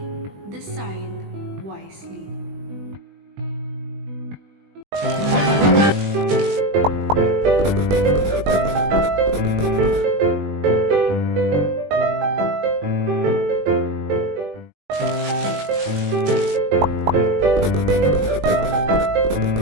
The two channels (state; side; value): late; left; 20 ms